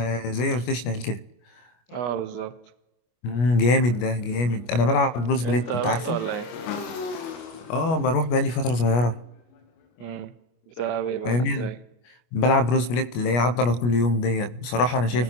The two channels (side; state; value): right; late; 25 ms